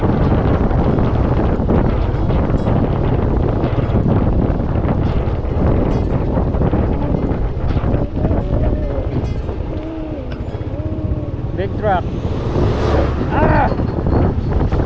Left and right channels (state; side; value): identical; both; correlation 1.00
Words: Big truck. Ah!